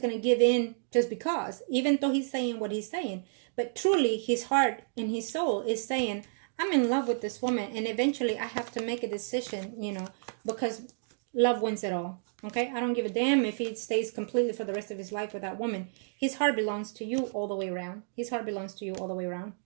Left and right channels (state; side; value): silent; left; digital silence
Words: going to give in just because, even though he's saying what he's saying. But truly, his heart and his soul is saying, I'm in love with this woman. And eventually, I have to make a decision, you know, because love wins it all. Okay? I don't give a damn if he stays completely for the rest of his life with that woman. His heart belongs to you all the way around. His heart belongs to you all the way around.